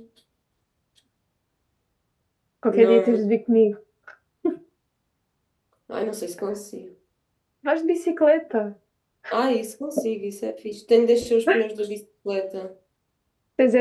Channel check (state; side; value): identical; both; correlation 1.00